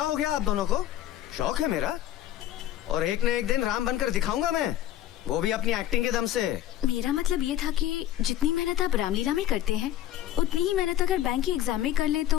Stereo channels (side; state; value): right; quieter; 12.3 dB